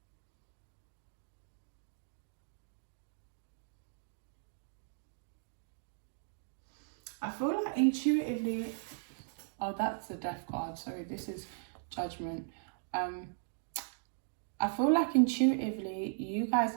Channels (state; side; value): silent; left; digital silence